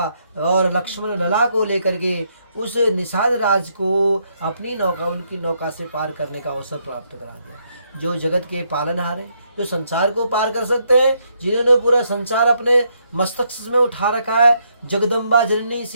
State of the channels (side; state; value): both; inverted; correlation -0.75